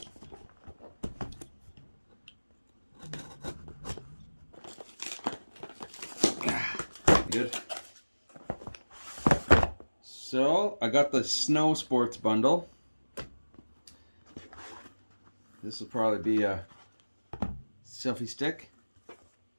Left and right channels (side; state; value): both; inverted; correlation -1.00